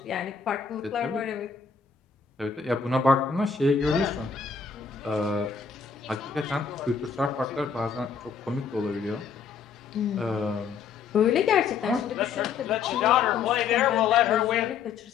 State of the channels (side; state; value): right; quieter; 6.1 dB